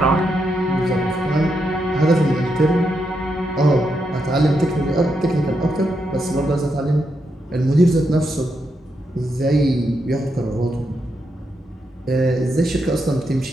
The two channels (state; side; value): normal; both; correlation 0.82